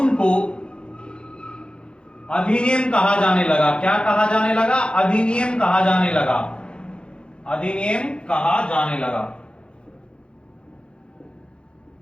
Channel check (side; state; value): right; late; 0.054 ms